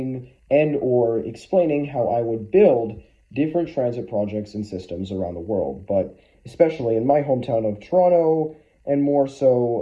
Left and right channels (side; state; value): both; identical; correlation 1.00